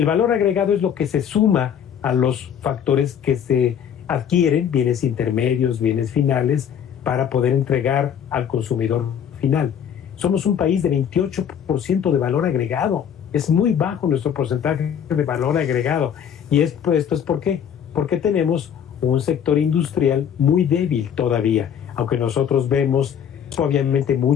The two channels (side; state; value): right; quieter; 8.6 dB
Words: valor agregado es lo que se suma a los factores que se adquieren, bienes intermedios, bienes finales, para poder entregar al consumidor final. Somos un país de 28% de valor agregado. Es muy bajo nuestro porcentaje de valor agregado. Y esto es ¿por qué? Porque tenemos un sector industrial muy débil todavía, aunque nosotros vemos obviamente